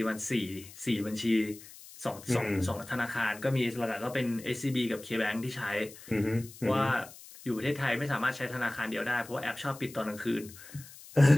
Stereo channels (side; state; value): left; noise; hiss, 18 dB below the sound